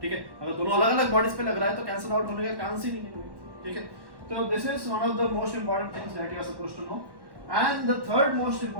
ठीक है। अगर दोनों अलग अलग बॉडीज पे लग रहा है तो कैंसिल आउट होने का चांस ही नहीं है, ठीक है। तो this is one of the most important things that you are supposed to know. And the third most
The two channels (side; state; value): left; late; 1.1 ms